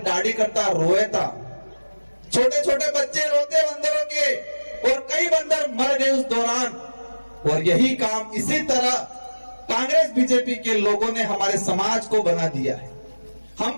दाढ़ी करता रोए था, छोटे छोटे बच्चे रोते बंदरों के, और कई बंदर मर गए उस दौरान। और यही काम इसी तरह कांग्रेस बीजेपी के लोगों ने हमारे समाज को बना दिया है।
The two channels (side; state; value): both; inverted; correlation -1.00